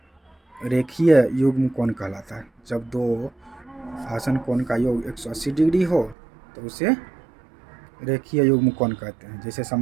रेखीय युग्म कोण कहलाता है। जब दो आसन कोण का योग 180 डिग्री हो तो उसे रेखीय युग्म कोण कहते हैं। जैसे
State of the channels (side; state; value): left; drops out; at 6.2 s